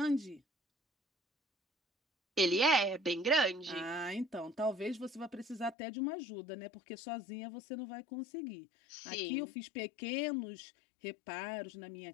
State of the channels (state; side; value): drops out; right; at 5.8 s